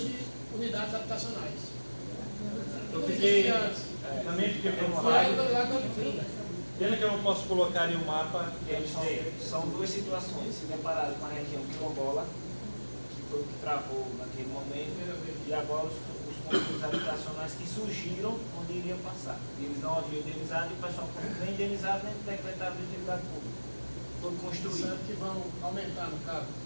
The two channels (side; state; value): both; inverted; correlation -1.00